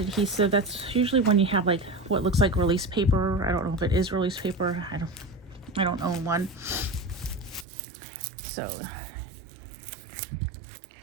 that's usually when you have like what looks like release paper. I don't know if it is release paper. I don't own one. So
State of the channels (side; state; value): left; drops out; at 7.7 s